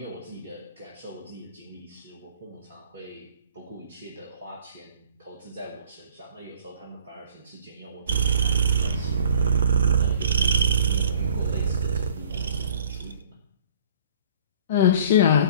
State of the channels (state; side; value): inverted; both; correlation -0.52